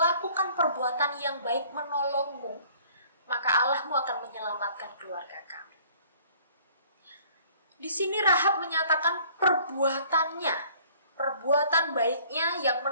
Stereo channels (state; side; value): inverted; both; correlation -0.55